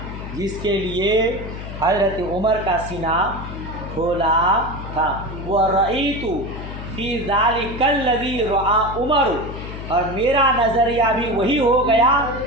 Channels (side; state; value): left; noise; hum, 9 dB below the sound